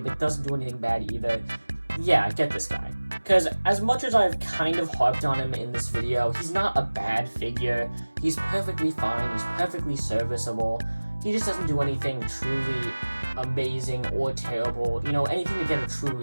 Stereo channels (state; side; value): inverted; both; correlation -1.00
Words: doesn't do anything bad either, yeah, get this guy. Because as much as I've kind of harped on him in this video, he's not a bad figure. He's perfectly fine, he's perfectly serviceable. He just doesn't do anything truly amazing or terrible, you know, anything to get a true